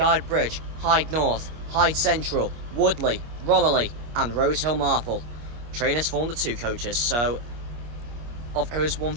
Hyde North, Hyde Central, Woodley, Romilly, and Rosehill Marple. Train has formed of 2 coaches, so of who's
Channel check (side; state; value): left; late; 25 ms